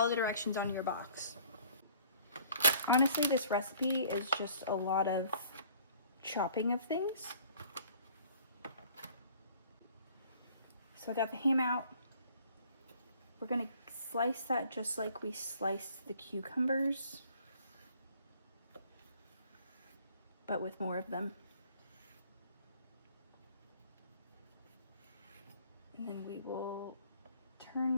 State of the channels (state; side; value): inverted; both; correlation -0.55